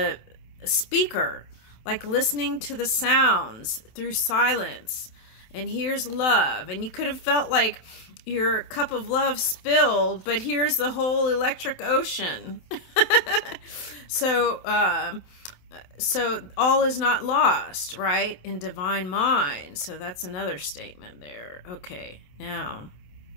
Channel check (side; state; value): right; late; 27 ms